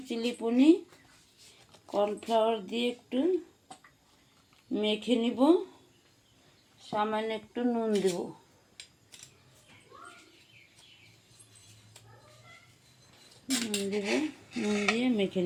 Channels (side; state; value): both; identical; correlation 1.00